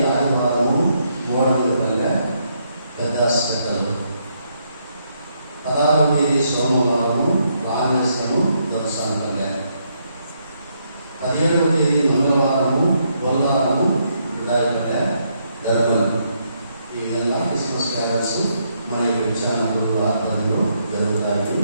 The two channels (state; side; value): inverted; both; correlation -0.75